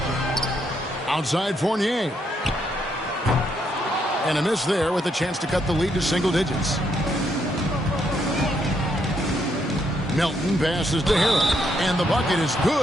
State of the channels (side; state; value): both; normal; correlation 0.75